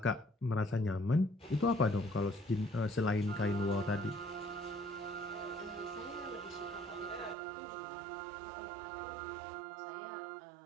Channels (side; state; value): left; drops out; at 7.4 s